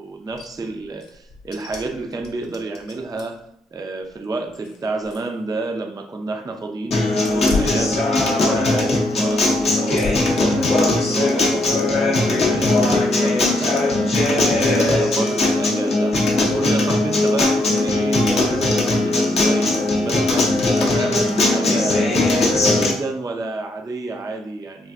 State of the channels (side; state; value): both; normal; correlation 0.76